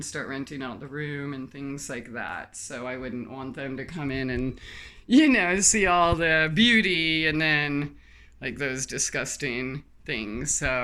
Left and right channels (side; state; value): both; identical; correlation 1.00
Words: start renting out the room and things like that. So I wouldn't want them to come in and, see all the beauty and then like those disgusting things.